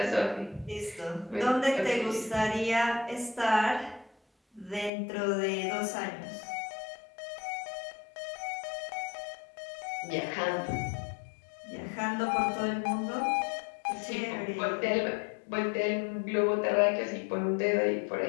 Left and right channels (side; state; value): right; drops out; at 4.9 s